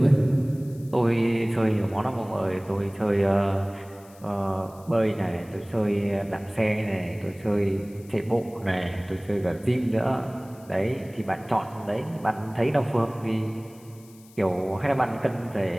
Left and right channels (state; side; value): noise; left; hiss, 26 dB below the sound